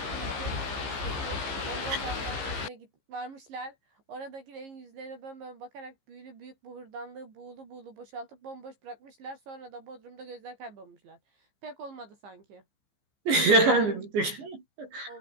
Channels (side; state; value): left; late; 15 ms